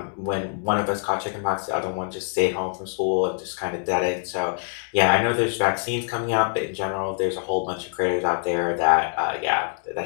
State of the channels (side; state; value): right; silent; digital silence